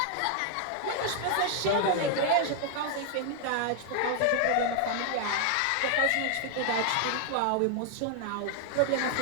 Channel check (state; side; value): different; both; correlation 0.00